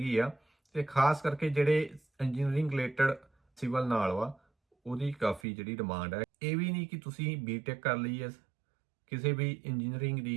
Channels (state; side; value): drops out; left; at 5.4 s